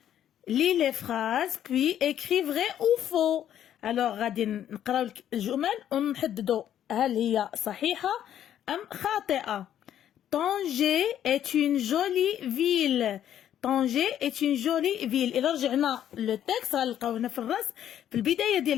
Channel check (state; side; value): quieter; right; 10.6 dB